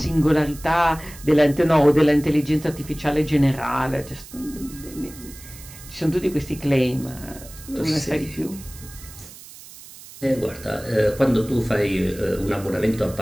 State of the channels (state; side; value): noise; right; hiss, 18 dB below the sound